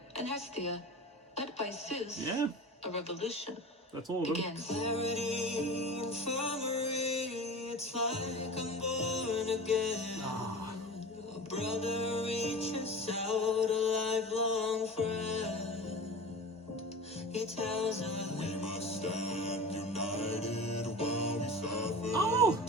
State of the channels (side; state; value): both; normal; correlation 0.34